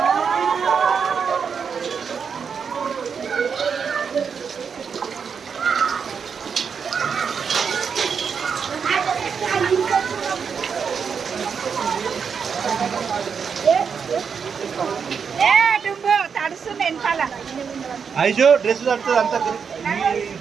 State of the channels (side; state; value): left; quieter; 6.4 dB